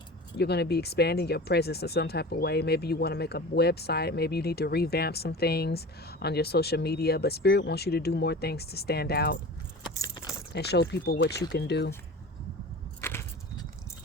You're going to be expanding your presence in some type of way. Maybe you want to make a website. Maybe you need to revamp some things on your social media. But Spirit wants you to do more things to stand out and show people what you can do.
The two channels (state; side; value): normal; both; correlation 0.36